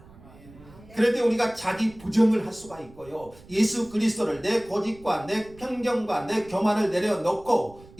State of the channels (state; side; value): noise; right; rumble, 22 dB below the sound